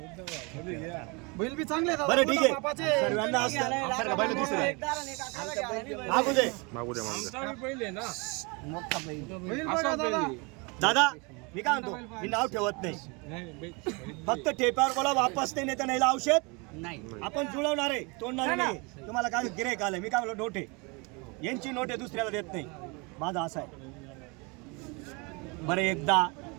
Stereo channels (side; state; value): left; quieter; 29.5 dB